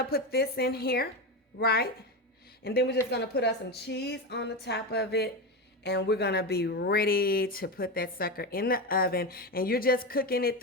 put this in here, right? And then we're just gonna put us some cheese on the top of it, and we're gonna be ready to put that sucker in the oven. And you're just cooking it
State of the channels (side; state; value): both; normal; correlation 0.17